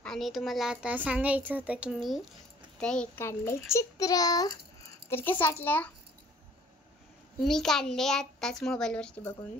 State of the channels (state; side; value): normal; both; correlation 0.55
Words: आणि तुम्हाला आता सांगायचं होतं की मी ते एक काढले चित्र. तर कसं वाटलं? मी काढले आत्ताच मोबाईलवरती बघून,